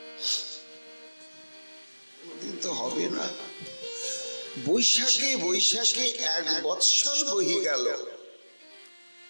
তো হবে না। বৈশাখে 1 বৎসর বহি গেল,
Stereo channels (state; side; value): inverted; both; correlation -1.00